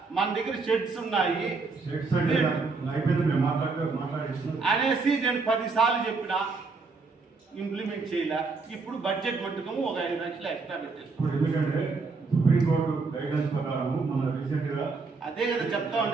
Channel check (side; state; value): left; quieter; 4.2 dB